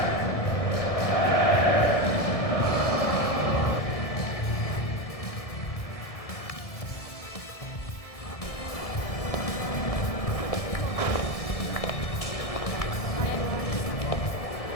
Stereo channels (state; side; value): late; right; 1.6 ms